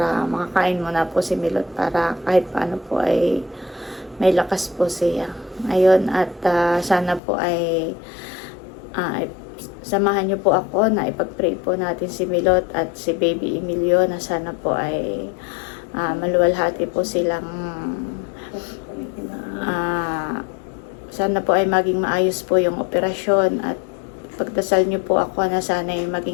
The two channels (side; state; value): right; drops out; at 7.2 s